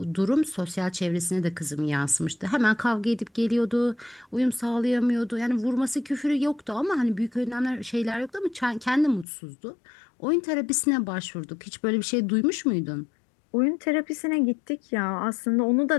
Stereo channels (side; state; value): right; drops out; at 9.2 s